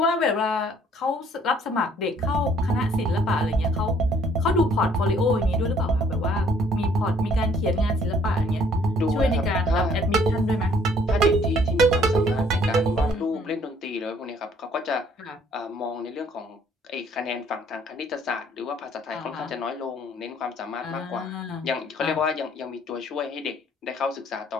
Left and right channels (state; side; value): normal; both; correlation 0.61